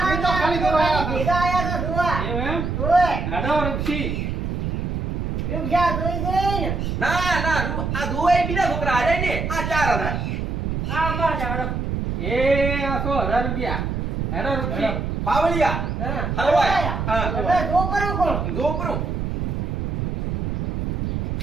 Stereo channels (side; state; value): right; noise; rumble, 2 dB below the sound